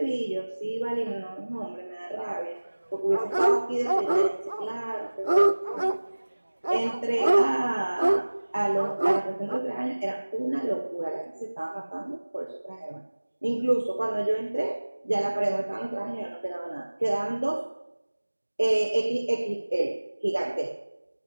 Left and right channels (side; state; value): both; inverted; correlation -1.00